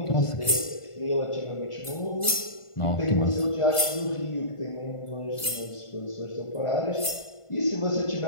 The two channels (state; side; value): late; right; 1.5 ms